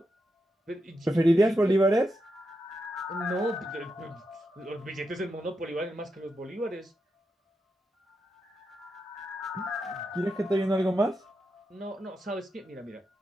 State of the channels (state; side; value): normal; both; correlation 0.86